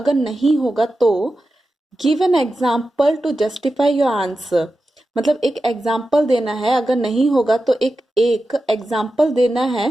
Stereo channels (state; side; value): normal; both; correlation 0.92